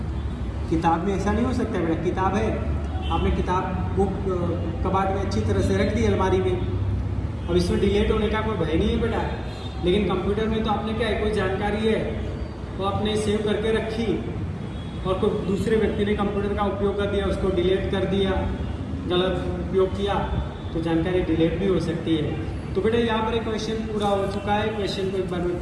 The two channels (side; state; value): both; identical; correlation 1.00